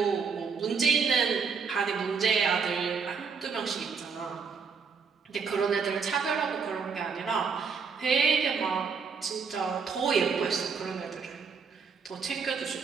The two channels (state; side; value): quieter; left; 5.6 dB